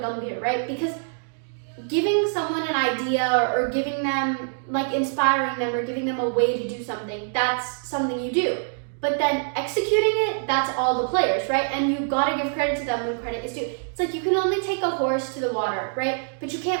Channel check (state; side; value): silent; left; digital silence